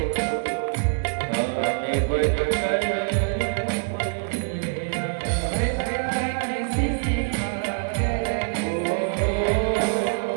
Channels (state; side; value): silent; left; 57 dB below the other